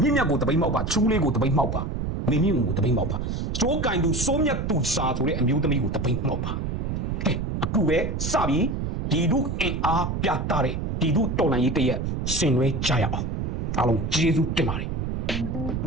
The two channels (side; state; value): right; noise; rumble, 2 dB below the sound